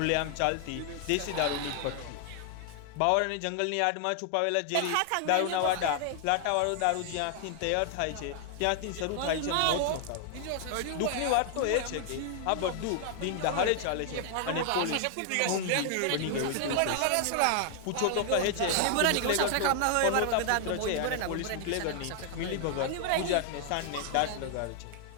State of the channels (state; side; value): different; both; correlation 0.00